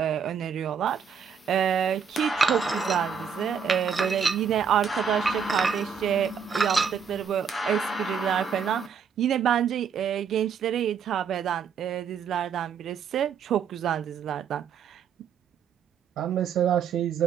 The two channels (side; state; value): left; quieter; 6.9 dB